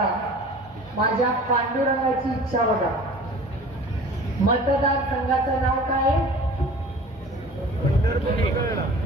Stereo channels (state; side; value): normal; both; correlation 0.43